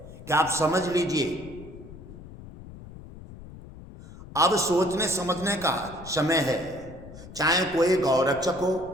कि आप समझ लीजिए, अब सोचने समझने का समय है। चाहे कोई गौरक्षक हो,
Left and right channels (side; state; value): left; noise; rumble, 16 dB below the sound